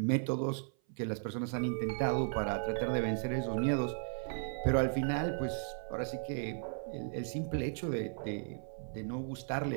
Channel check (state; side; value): silent; left; 54 dB below the other